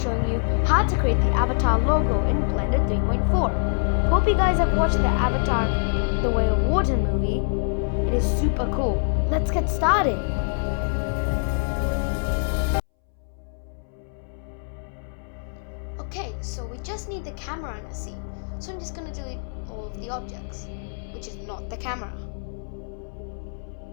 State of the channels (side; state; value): right; silent; 62 dB below the other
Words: you how to create the avatar logo in Blender 3.4. Hope you guys have watched the Avatar The Way of Water movie. It is super cool. Let's get started. Okay, so we just need the camera in a scene. So I'm just going to delete all of the objects, which is not the camera.